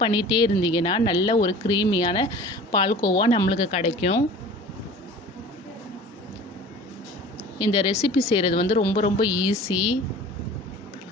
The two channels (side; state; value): both; normal; correlation 0.42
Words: பண்ணிகிட்டே இருந்தீங்கன்னா நல்ல ஒரு க்ரீமியான பால்கோவா நம்மளுக்கு கிடைக்கும். இந்த ரெசிபி செய்கிறது வந்து ரொம்ப ஈஸி.